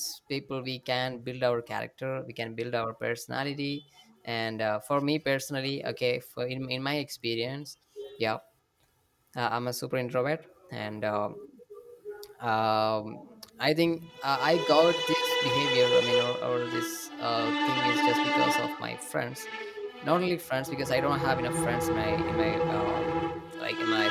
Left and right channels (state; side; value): identical; both; correlation 1.00